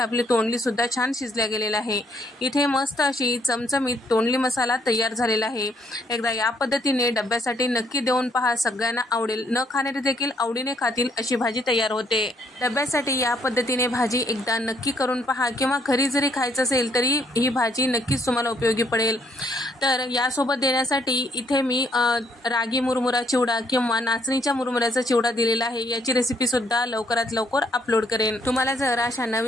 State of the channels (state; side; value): normal; both; correlation 0.69